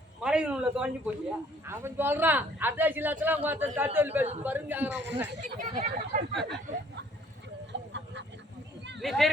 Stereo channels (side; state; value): both; normal; correlation 0.59